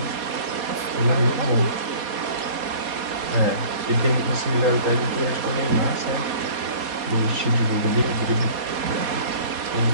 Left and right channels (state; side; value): late; left; 4.2 ms